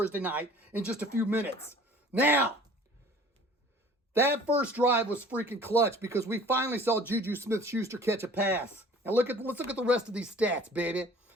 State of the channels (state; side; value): normal; both; correlation 0.49